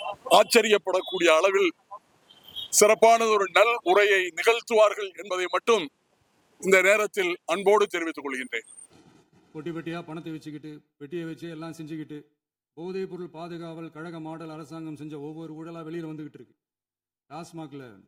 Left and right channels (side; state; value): both; identical; correlation 1.00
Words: ஆச்சரியப்படக்கூடிய அளவில் சிறப்பானது ஒரு நல் உரையை நிகழ்த்துவார்கள் என்பதை மட்டும் இந்த நேரத்தில் அன்போடு தெரிவித்துக் கொள்கின்றேன். பொட்டி பெட்டியா பணத்தை வச்சுக்கிட்டு பெட்டியை வச்சு எல்லாம் செஞ்சுக்கிட்டு போதைப் பொருள் பாதுகாவல் கழக மாடல் அரசாங்கம் செஞ்ச ஒவ்வொரு ஊழலா வெளியில் வந்துகிட்டு இருக்கு. டாஸ்மாக்ல